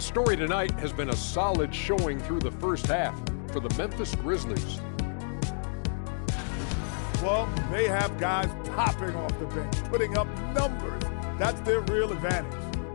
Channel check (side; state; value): right; silent; digital silence